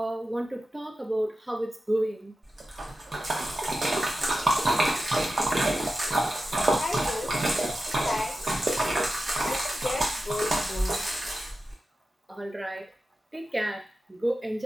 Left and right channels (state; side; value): normal; both; correlation 0.92